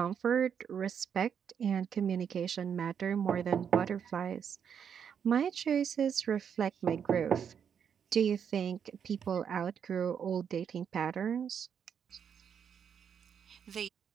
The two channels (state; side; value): quieter; left; 7.7 dB